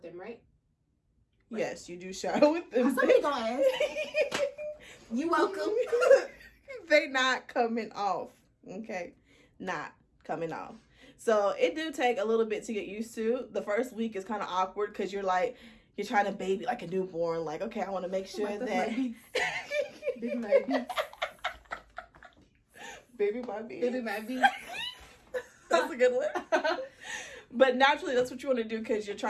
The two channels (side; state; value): both; identical; correlation 1.00